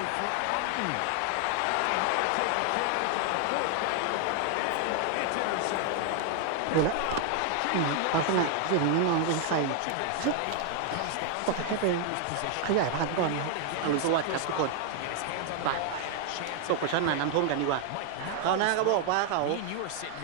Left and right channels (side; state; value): both; different; correlation 0.00